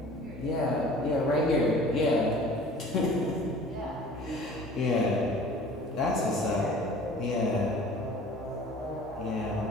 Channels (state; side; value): normal; both; correlation 0.46